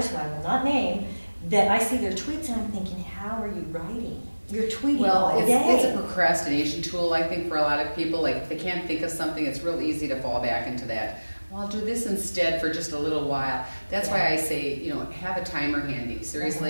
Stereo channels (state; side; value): inverted; both; correlation -1.00